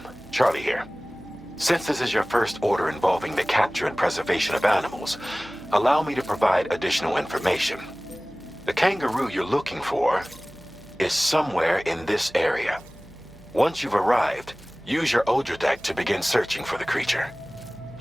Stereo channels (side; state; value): right; noise; hum, 23 dB below the sound